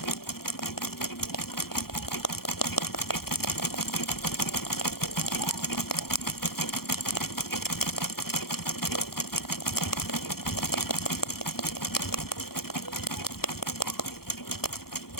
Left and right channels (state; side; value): late; right; 0.94 ms